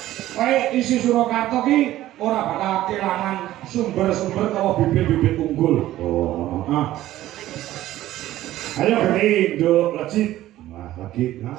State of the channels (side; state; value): left; quieter; 14.5 dB